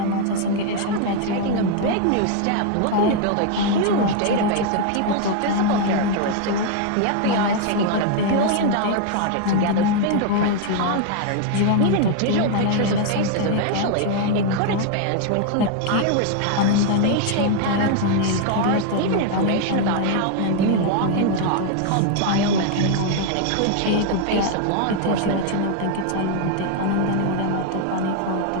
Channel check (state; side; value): different; both; correlation 0.00